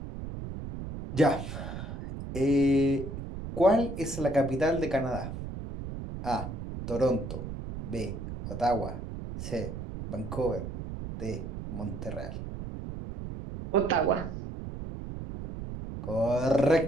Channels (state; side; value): noise; right; rumble, 8 dB below the sound